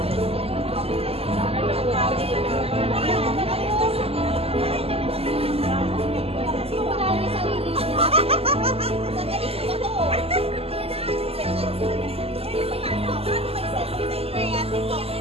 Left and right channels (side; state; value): left; late; 0.29 ms